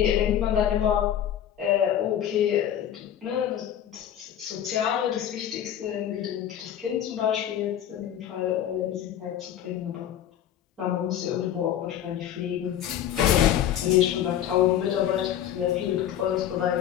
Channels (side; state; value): right; quieter; 10.5 dB